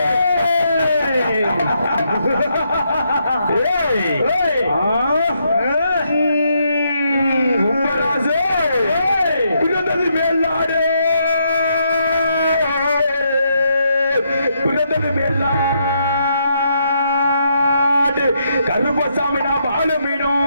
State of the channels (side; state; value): both; inverted; correlation -0.77